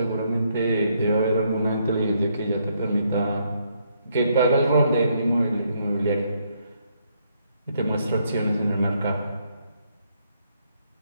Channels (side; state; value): both; inverted; correlation -0.73